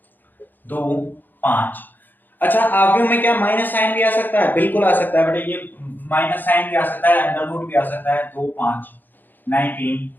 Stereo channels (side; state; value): right; late; 0.089 ms